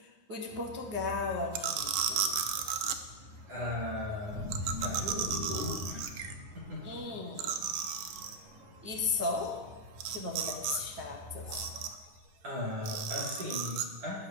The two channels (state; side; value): late; left; 11 ms